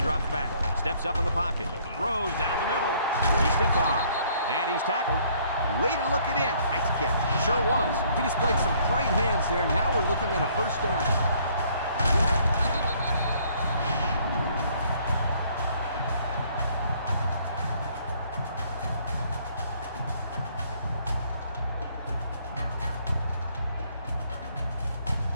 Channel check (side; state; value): both; inverted; correlation -0.63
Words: drops back, steps up in the pocket, throws down the middle. He's stiff-armed, and he's tackled. Way to look it in. Nice catch. Sure was. He displayed some great hands there. Now we're looking at a 1st down.